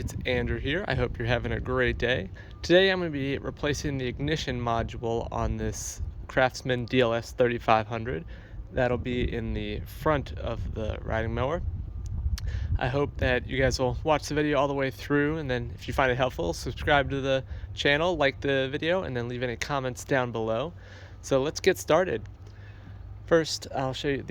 Andrew here. I hope you're having a great day. Today I'm going to be replacing the ignition module on this Craftsman DLS3500. That'll be in the front of the riding mower. I hope that you guys will watch the video all the way through, and then if you find it helpful, subscribe to the channel, like the video, and then leave any comments down below. So let's get started. First, I'll show you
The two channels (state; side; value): identical; both; correlation 1.00